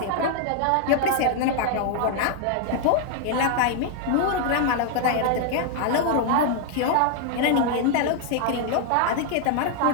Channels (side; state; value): both; different; correlation 0.00